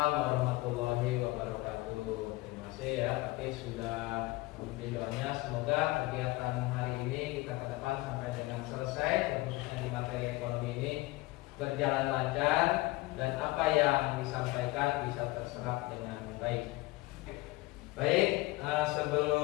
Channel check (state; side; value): quieter; right; 20.6 dB